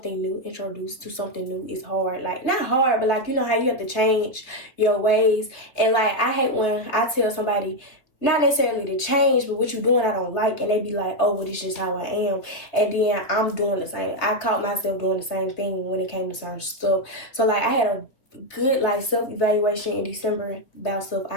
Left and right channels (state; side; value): late; right; 3.1 ms